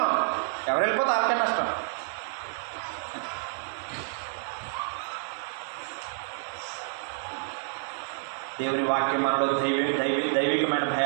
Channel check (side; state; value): left; silent; digital silence